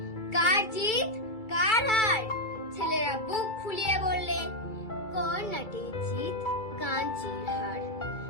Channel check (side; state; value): right; late; 2.3 ms